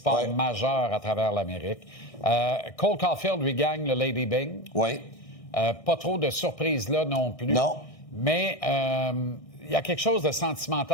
majeurs à travers l'Amérique. Cole Caulfield lui gagne le Lady Byng. Oui. Pas trop de surprises là non plus. Non. Mais il y a quelque chose de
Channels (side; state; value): right; late; 1.6 ms